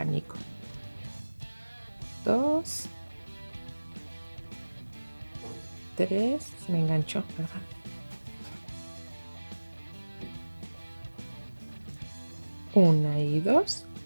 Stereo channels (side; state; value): both; inverted; correlation -1.00